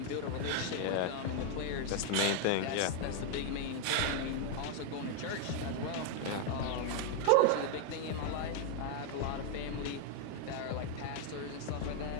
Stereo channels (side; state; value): both; different; correlation 0.00